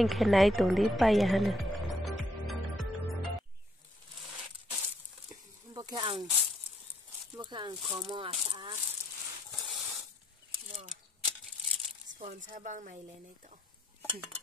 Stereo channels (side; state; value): both; normal; correlation 0.71